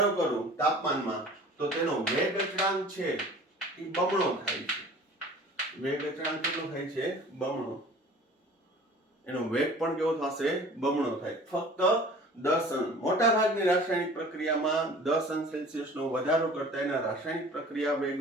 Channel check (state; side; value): normal; both; correlation 0.45